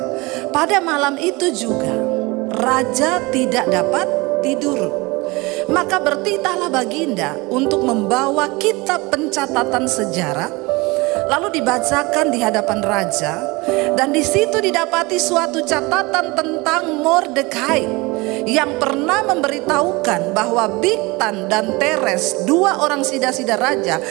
Pada malam itu juga raja tidak dapat tidur. Maka bertitahlah baginda untuk membawa kitab pencatatan sejarah, lalu dibacakan di hadapan raja. Dan di situ didapati suatu catatan tentang Mordekai yang pernah memberitahukan bahwa Bigtan dan Teres, 2 orang sida-sida raja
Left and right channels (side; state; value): left; quieter; 24.1 dB